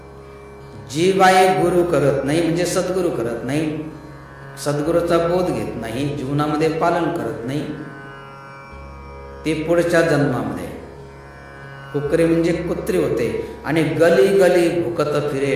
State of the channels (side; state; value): both; identical; correlation 1.00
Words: जी बाई गुरु करत नाही म्हणजे सद्गुरु करत नाही, सद्गुरूचा बोध घेत नाही, जीवनामध्ये पालन करत नाही, ते पुढच्या जन्मामध्ये कुकरी म्हणजे कुत्री होते. आणि गली गली भुकत फिरे